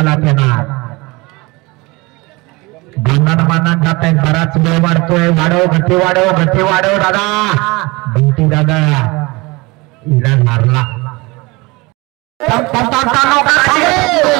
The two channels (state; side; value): quieter; left; 24.1 dB